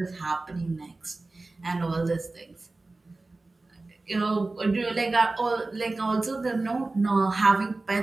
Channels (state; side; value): quieter; left; 3.2 dB